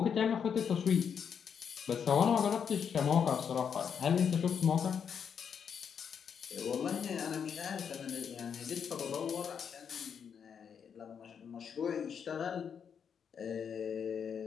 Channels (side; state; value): right; quieter; 7.3 dB